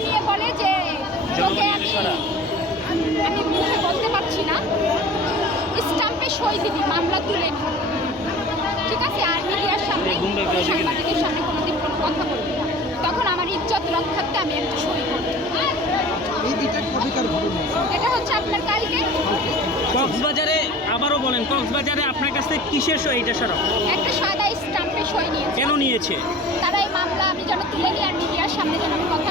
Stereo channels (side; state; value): both; normal; correlation 0.41